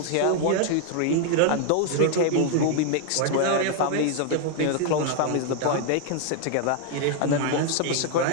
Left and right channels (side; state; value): both; different; correlation 0.00